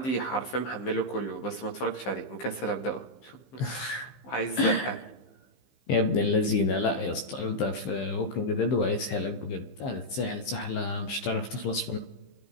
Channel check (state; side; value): late; right; 15 ms